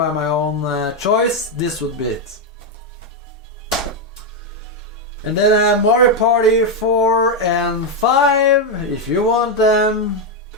my own choice, this would be it. And then Mario Party 4 and 5, if you want them,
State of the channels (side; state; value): both; normal; correlation 0.03